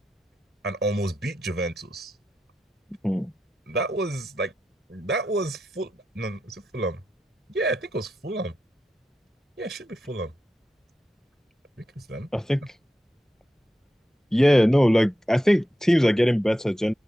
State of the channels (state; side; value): normal; both; correlation 0.88